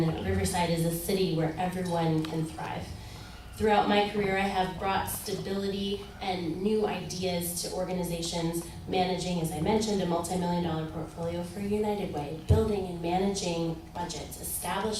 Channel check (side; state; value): both; identical; correlation 1.00